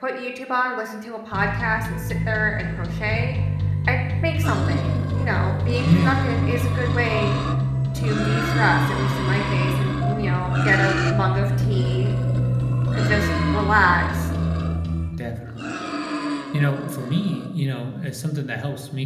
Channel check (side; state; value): both; identical; correlation 1.00